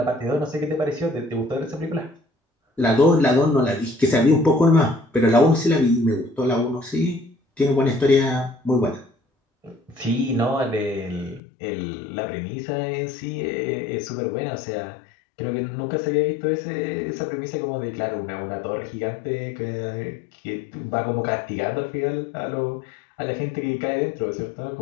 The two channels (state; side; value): drops out; right; at 11.4 s